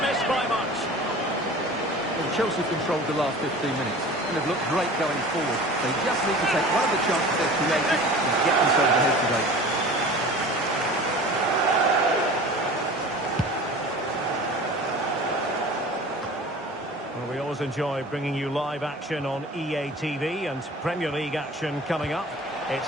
miss by much. Well, Chelsea controlled the last 15 minutes and have looked great going forward. They just need to take one of the chances they've created and get themselves ahead today. Well, we always enjoy bringing you live action on EA TV and Premier League action coming up.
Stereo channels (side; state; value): both; normal; correlation 0.40